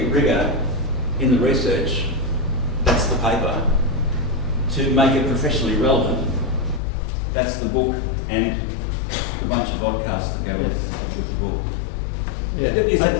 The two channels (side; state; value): right; drops out; at 6.8 s